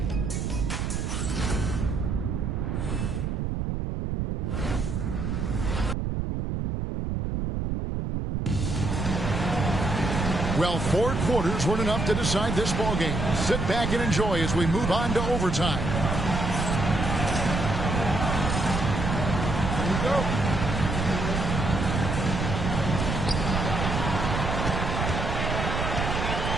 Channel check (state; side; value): noise; right; rumble, 1 dB below the sound